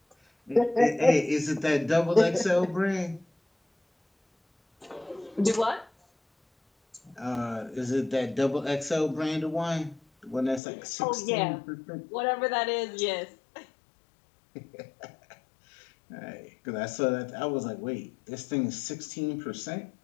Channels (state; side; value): drops out; right; at 10.6 s